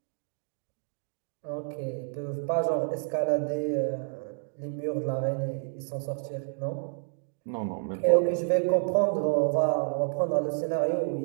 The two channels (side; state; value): left; silent; digital silence